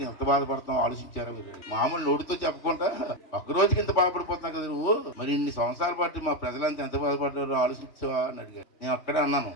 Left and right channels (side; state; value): right; late; 3.2 ms